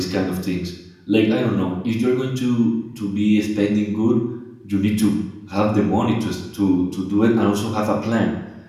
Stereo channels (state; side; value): identical; both; correlation 1.00